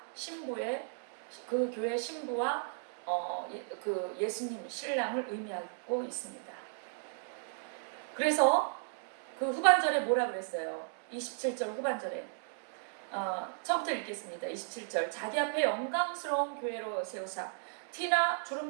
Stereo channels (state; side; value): silent; left; digital silence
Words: 신부의 그 교회 신부와 그 예수님 신랑을 의미하고 있습니다. 그래서 그 후반절에 뭐라 그랬어요? 27절 후반절에 처음부터 읽겠습니다. 27절 자기 앞에 영광스러운 교회로 세우사 티나